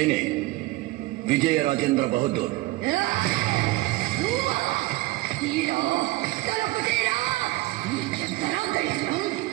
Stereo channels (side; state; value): left; quieter; 19.3 dB